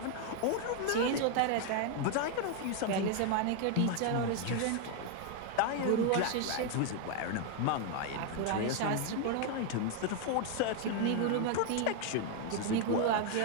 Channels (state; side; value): different; both; correlation 0.00